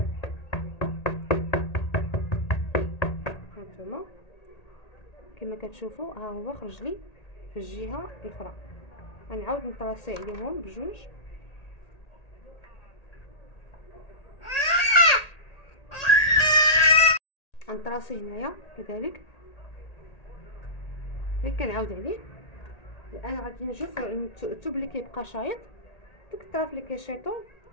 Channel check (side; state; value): right; late; 1.8 ms